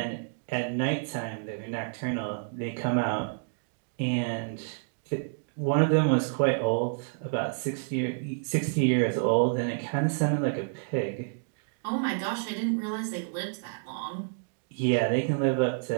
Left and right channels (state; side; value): silent; left; digital silence